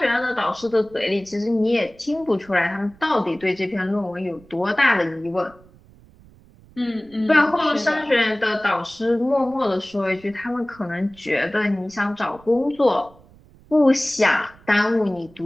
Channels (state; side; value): noise; right; rumble, 26 dB below the sound